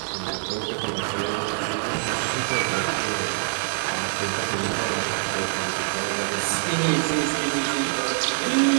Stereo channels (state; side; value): silent; left; 62 dB below the other